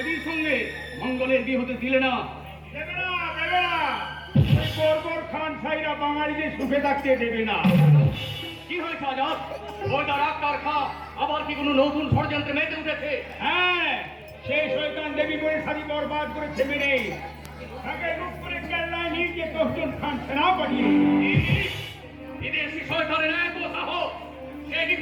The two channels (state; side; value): identical; both; correlation 1.00